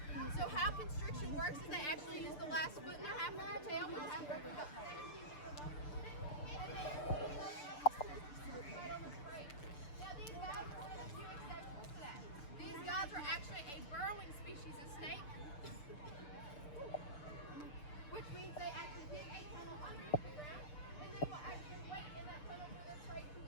So how constriction works is they actually use the last foot in their half of their tail, which has roughly about 17 Now these guys are one of the few exceptions to that. These guys are actually a burrowing species of snake, which means they actually dig a tunnel underneath the ground, and they will actually wait in that tunnel for their prey to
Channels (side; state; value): right; late; 6.8 ms